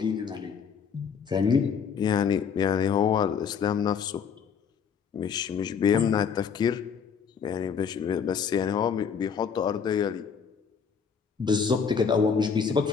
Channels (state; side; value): quieter; right; 6.7 dB